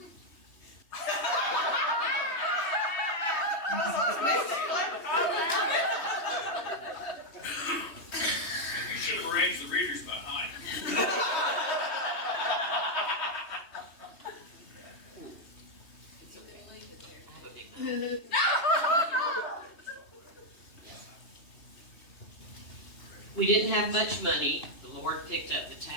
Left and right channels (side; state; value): right; late; 2.9 ms